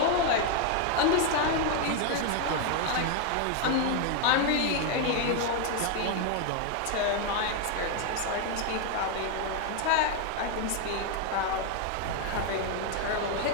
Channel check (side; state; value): both; different; correlation 0.00